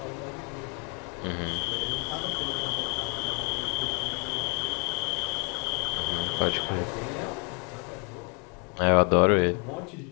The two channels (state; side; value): quieter; right; 34.4 dB